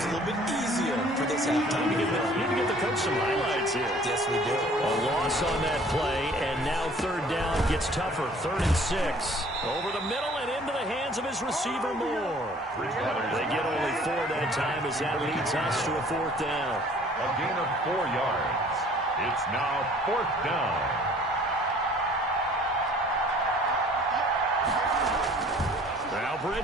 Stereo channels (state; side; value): normal; both; correlation 0.53